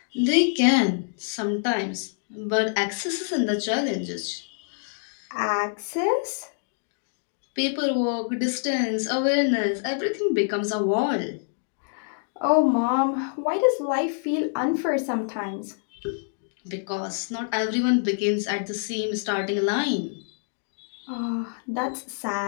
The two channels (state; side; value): silent; right; digital silence